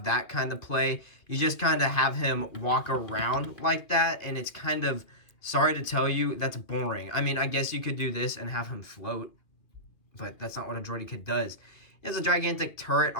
that kind of play. You just kind of have him walk around like that, and it's kind of, sorry to tell you, that's boring. I mean, I guess you could do this and have him float, but that's not what a Droideka does. He has a gigantic turret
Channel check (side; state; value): right; late; 2.3 ms